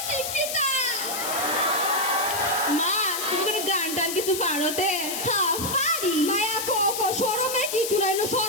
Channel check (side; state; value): left; noise; hiss, 4 dB below the sound